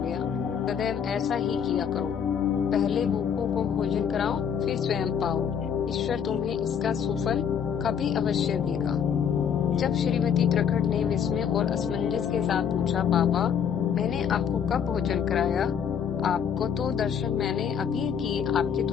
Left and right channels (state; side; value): quieter; right; 7.8 dB